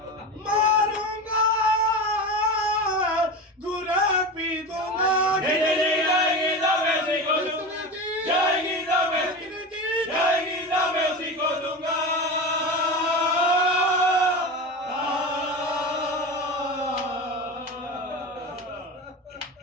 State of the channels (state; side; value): normal; both; correlation 0.25